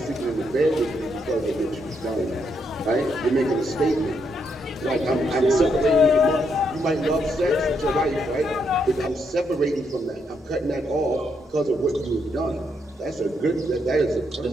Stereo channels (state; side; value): normal; both; correlation 0.77